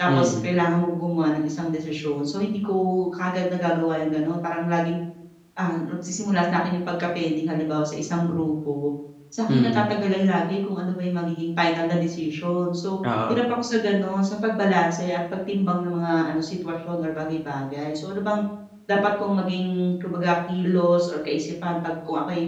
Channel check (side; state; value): both; identical; correlation 1.00